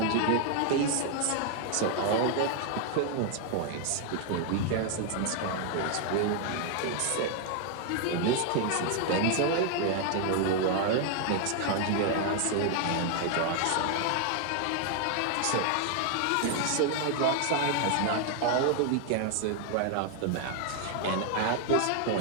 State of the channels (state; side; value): different; both; correlation 0.00